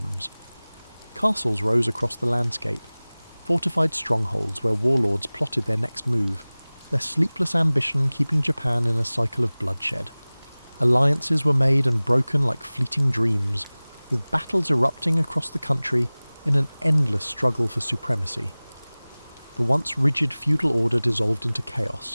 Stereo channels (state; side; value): inverted; both; correlation -1.00